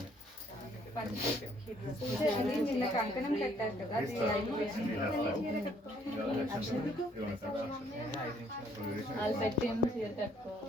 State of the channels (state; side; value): normal; both; correlation 0.64